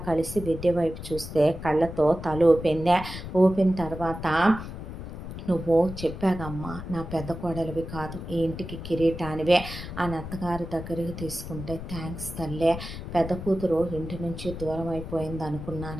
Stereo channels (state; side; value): noise; left; rumble, 9 dB below the sound